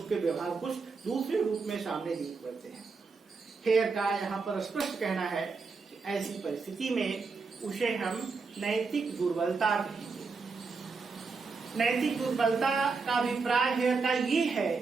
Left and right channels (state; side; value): quieter; left; 4.6 dB